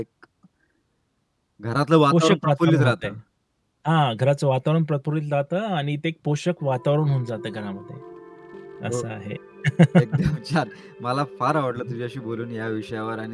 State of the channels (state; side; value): identical; both; correlation 1.00